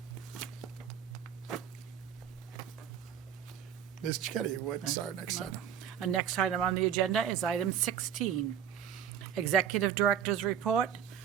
Ms. Chetty, what's our next item? Our next item on the agenda is item 16, Executive Director's Report,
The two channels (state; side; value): quieter; left; 9.1 dB